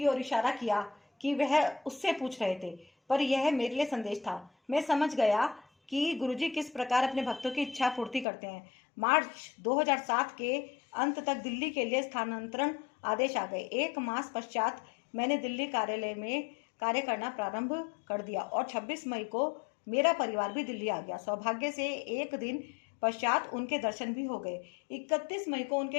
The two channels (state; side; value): drops out; right; at 8.2 s